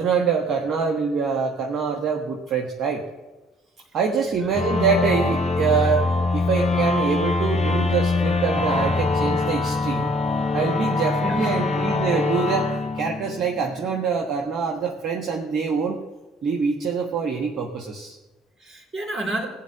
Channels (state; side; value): normal; both; correlation 0.57